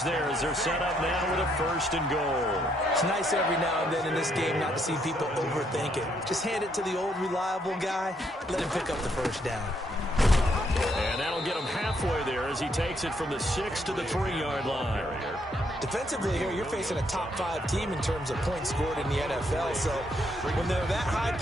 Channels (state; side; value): normal; both; correlation 0.73